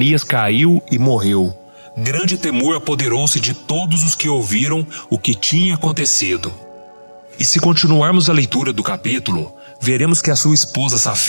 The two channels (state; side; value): inverted; both; correlation -1.00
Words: caiu e morreu. Grande temor apoderou-se de todos os que ouviram o que tinha acontecido. E se continuarmos a leitura do capítulo, veremos que a sua esposa